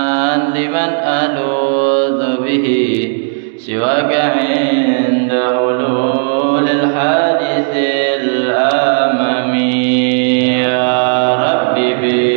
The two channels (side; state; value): left; silent; digital silence